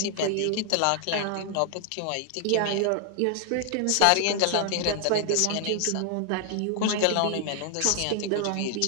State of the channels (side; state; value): both; different; correlation 0.00